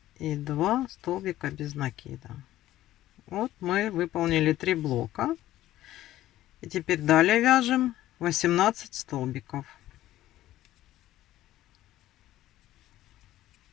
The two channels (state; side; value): quieter; right; 14.4 dB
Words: и 2 столбика без накида. Вот мы выполнили 3 блока. И теперь далее вяжем 18 столбиков.